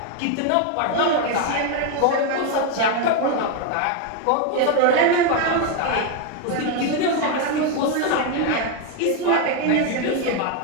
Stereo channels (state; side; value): different; both; correlation 0.01